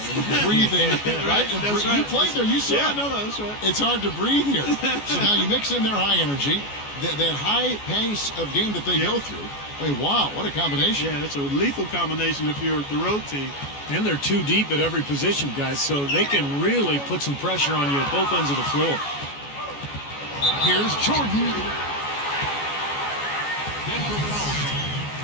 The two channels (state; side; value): late; right; 14 ms